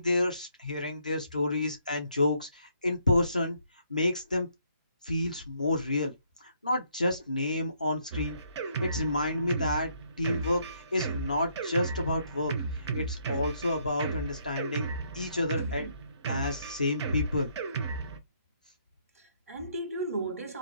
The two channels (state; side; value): inverted; both; correlation -0.70